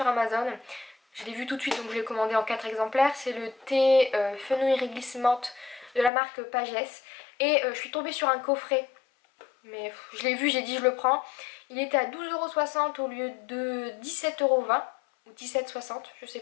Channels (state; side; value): drops out; right; at 6.1 s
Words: Amazon. Je l'ai vu tout de suite donc je l'ai commandé en 4 exemplaires. C'est le thé fenouil réglisse menthe de la marque Pagès. Et je suis tombée sur un coffret. Mais je l'ai vu, j'ai dit je le prends. Il était à 12,60€ au lieu de 17,20€ ou 17,60€, je sais